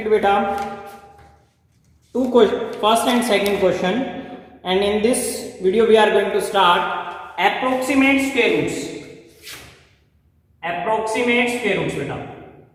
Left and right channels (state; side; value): identical; both; correlation 1.00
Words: beta two first and second question, and in this video, we are going to start approximate square roots. Approximate square roots, beta.